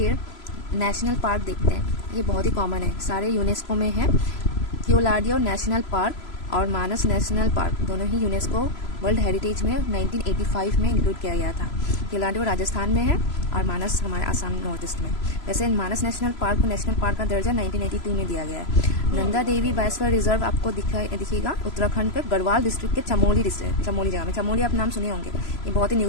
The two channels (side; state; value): right; late; 3.0 ms